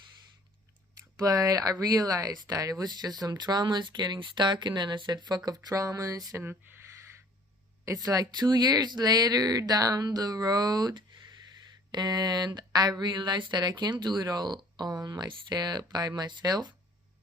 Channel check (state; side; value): normal; both; correlation 0.53